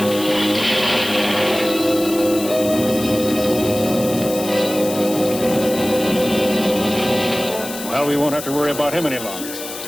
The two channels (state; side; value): noise; left; hiss, 10 dB below the sound